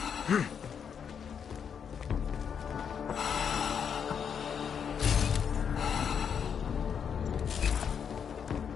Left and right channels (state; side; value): quieter; right; 7.3 dB